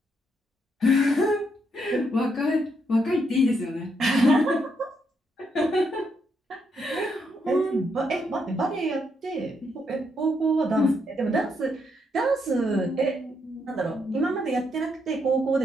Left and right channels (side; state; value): both; normal; correlation 0.77